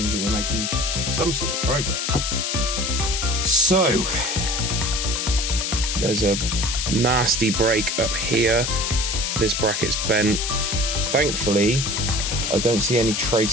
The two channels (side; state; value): left; noise; hiss, 1 dB below the sound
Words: that we're making some sort of progress. So, there's a nasty break up here. This bracket's bent. Thankfully, I don't see any